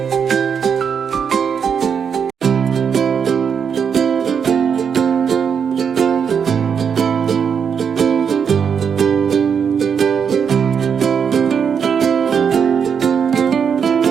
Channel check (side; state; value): left; quieter; 7.0 dB